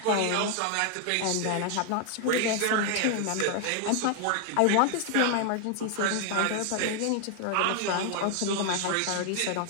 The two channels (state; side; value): different; both; correlation 0.00